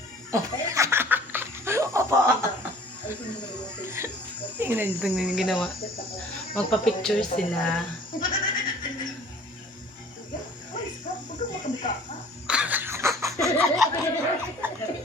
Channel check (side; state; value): both; normal; correlation 0.50